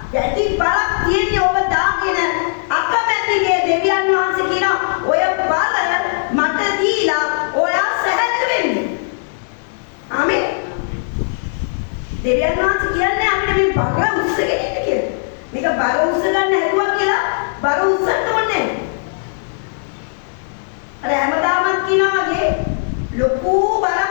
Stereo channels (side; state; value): right; silent; digital silence